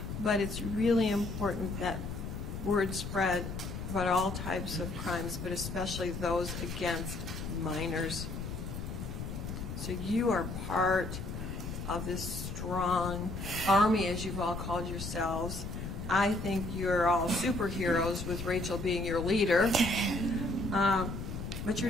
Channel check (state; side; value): noise; left; rumble, 6 dB below the sound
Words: But it's really important that word spread about all types of crimes, but especially those against minors. So you are part of this strong army, as you've all called yourselves. I think you're all superheroes, with Rachel being your leader. But